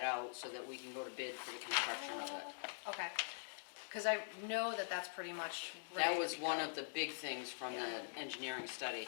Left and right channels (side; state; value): right; silent; digital silence